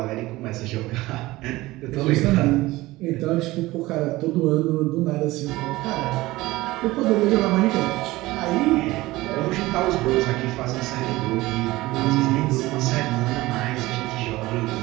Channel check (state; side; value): quieter; left; 18.9 dB